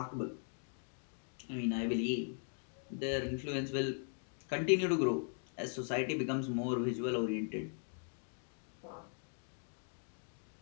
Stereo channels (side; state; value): right; silent; 51 dB below the other